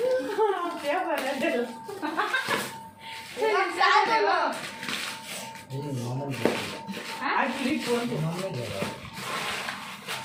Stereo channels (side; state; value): both; identical; correlation 1.00